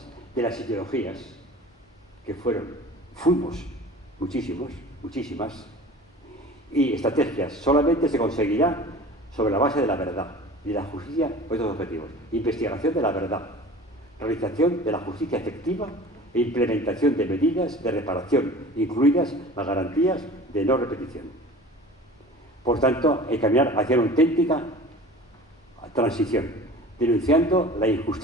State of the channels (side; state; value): both; normal; correlation 0.41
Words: de las ideologías, que fuimos muchísimas, y estrategias, solamente se conseguirá sobre la base de la verdad y la justicia por estos objetivos. Investigación de la verdad, realización de la justicia efectiva e implementación de medidas de reparación, incluidas las garantías de no repetición. Por tanto, hay que caminar hacia una auténtica transición, denunciando la